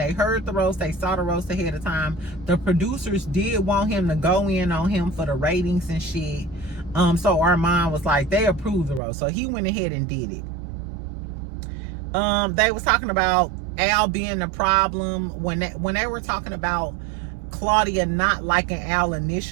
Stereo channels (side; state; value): left; drops out; at 9.0 s